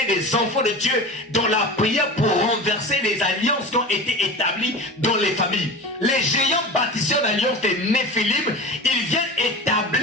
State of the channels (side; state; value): both; normal; correlation 0.31